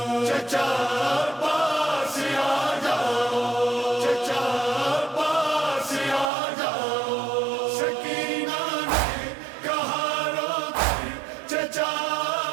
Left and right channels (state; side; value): drops out; left; at 6.3 s